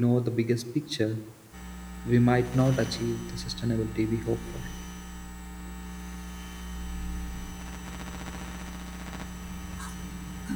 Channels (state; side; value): identical; both; correlation 1.00